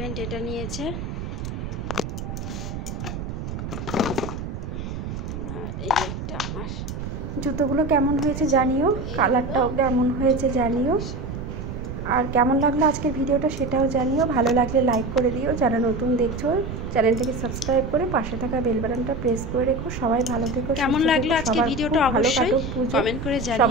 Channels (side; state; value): right; noise; rumble, 6 dB below the sound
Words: এটা নিয়েছে। এই একটা আমার জুতোগুলো কেমন হয়েছে জানিও, কালারটাও কেমন হয়েছে জানিও, আর কেমন লাগলো আজকের ভিডিওটা সেটাও জানিও। ভালো লাগলে লাইক করে দিও, যারা নতুন দেখছো চ্যানেলটাকে সাবস্ক্রাইব করে পাশে থাকা বেল বাটনটা প্রেস করে রেখো। সবাই ভালো থেকো, কেমন লাগলো আজকের ভিডিওটা ভালো কাটুক পুজো,